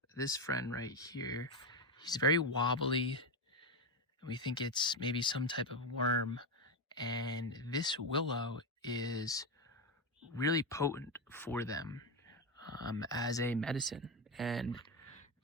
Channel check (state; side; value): normal; both; correlation 0.11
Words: this friend right here. He's very wobbly, and we think it's maybe some type of worm. And this willow is really potent for them as a medicine. And